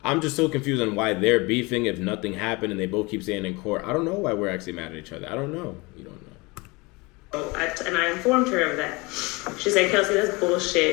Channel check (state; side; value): quieter; right; 25.4 dB